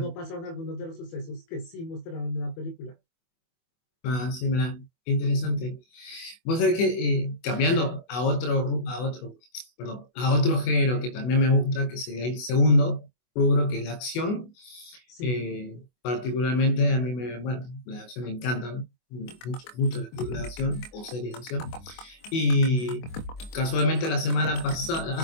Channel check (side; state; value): right; late; 24 ms